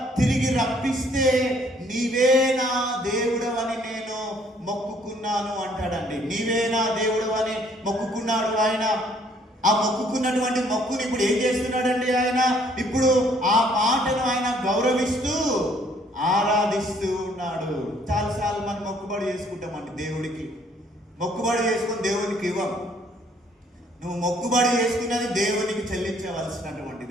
తిరిగి రప్పిస్తే నీవే నా దేవుడవని నేను మొక్కుకున్నాను అంటాడండి. నీవే నా దేవుడవని మొక్కుకున్నాడు ఆయన. ఆ మొక్కుకున్నటువంటి మొక్కుని ఇప్పుడు ఏం చేస్తున్నాడండి ఆయన? ఇప్పుడు ఆ మాటను ఆయన గౌరవిస్తూ ఆరాధిస్తూ ఉన్నాడు. చాలాసార్లు మనం మొక్కుబడి చేసుకుంటామండి. దేవుడికి మొక్కుబడి చేసుకుని దేవునికి ఇవ్వం. నువ్వు మొక్కుబడి చేసుకున్నది దేవునికి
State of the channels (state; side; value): normal; both; correlation 0.63